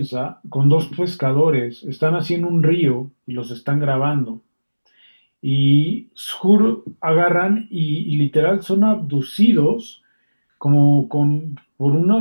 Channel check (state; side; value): inverted; both; correlation -1.00